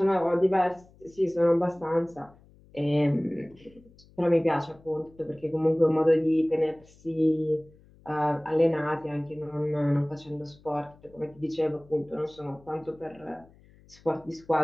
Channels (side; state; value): left; noise; hum, 27 dB below the sound